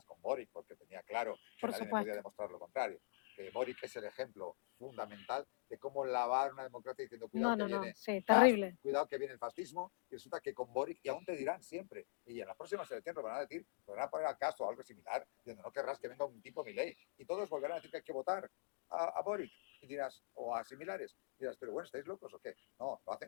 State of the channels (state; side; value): silent; right; digital silence